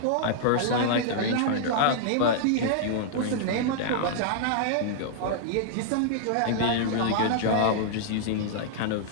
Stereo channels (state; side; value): different; both; correlation -0.01